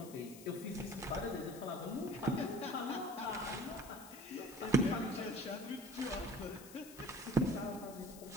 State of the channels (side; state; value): left; noise; hiss, 16 dB below the sound